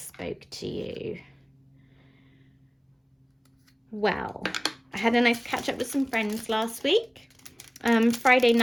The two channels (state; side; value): identical; both; correlation 1.00